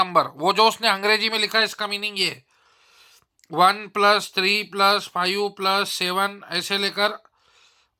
वो जो उसने अंग्रेजी में लिखा है इसका मीनिंग ये 1+3 + 5 + 7 ऐसे लेकर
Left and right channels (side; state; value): both; identical; correlation 1.00